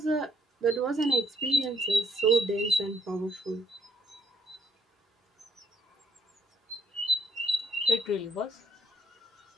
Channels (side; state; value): both; normal; correlation 0.67